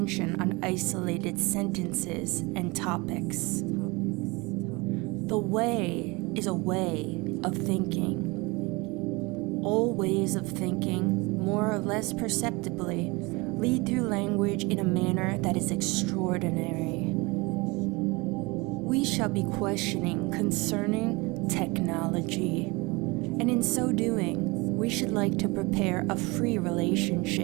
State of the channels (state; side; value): quieter; left; 25.3 dB